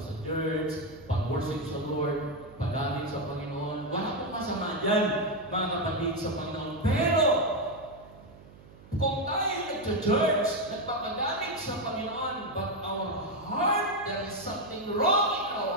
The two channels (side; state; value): right; noise; hum, 21 dB below the sound